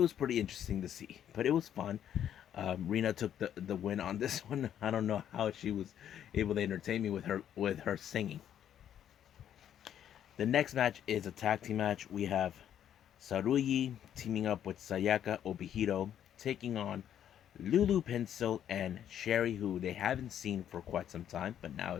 pretty interesting to see. But it was fun. Rena took the win on this one. I don't know how she was able to entertain me with her singing. The next match is a tag team match. We have Saruyi teaming up with Sayaka Obihiro, taking on Lulu Pencil and Sherry, who they haven't seen for quite some time, but now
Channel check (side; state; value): right; quieter; 10.1 dB